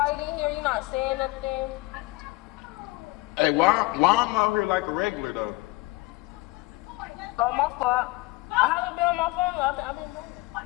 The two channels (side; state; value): right; quieter; 22.3 dB